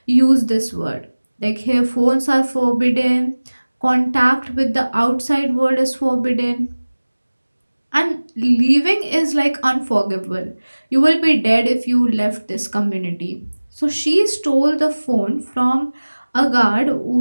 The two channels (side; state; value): both; inverted; correlation -1.00